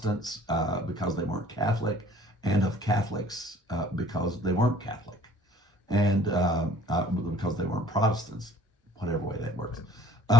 because they weren't Catholic, and of Catholics because they weren't Catholic, and because they weren't Protestants, whatever way that works.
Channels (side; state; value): both; normal; correlation 0.54